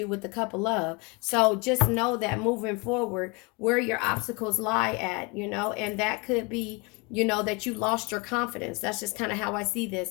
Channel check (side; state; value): right; quieter; 28.9 dB